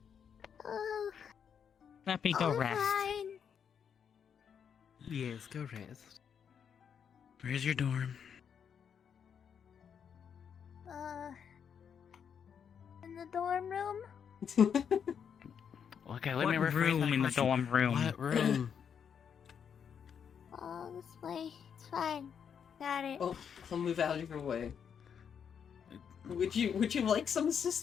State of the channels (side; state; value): right; quieter; 7.5 dB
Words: Oh, Lippy, go I'm rest. fine. Yes, go rest. Where's your dorm? In the dorm room. Okay, let What me rephrase room my in the question. dorm room? What room? Oh, this way. It's fine. Got it. Oh, I'll move out of your way. Would you like some